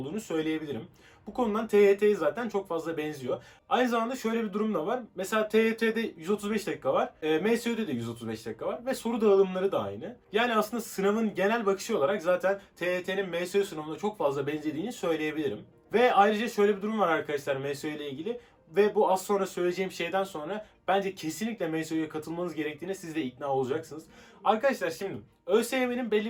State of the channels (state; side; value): identical; both; correlation 1.00